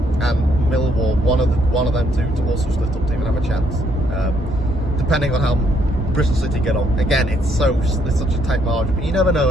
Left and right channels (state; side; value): normal; both; correlation 0.71